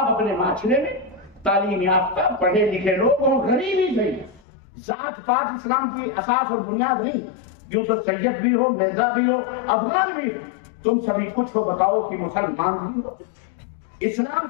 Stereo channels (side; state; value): right; drops out; at 4.4 s